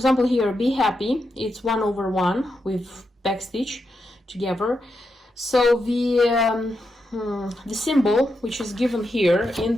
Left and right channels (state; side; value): normal; both; correlation 0.85